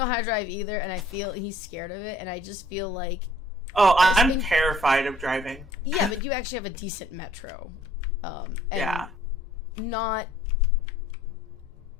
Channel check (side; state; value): both; normal; correlation 0.59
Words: how to drive either, and I feel he's scared of it, and I just feel like... Oh, I'm terrified of driving. Yeah, but you actually have a decent metro. And not